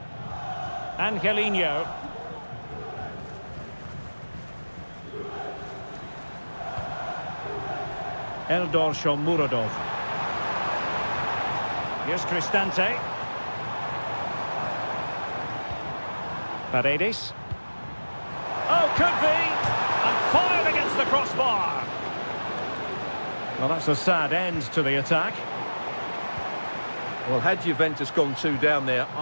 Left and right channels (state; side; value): inverted; both; correlation -1.00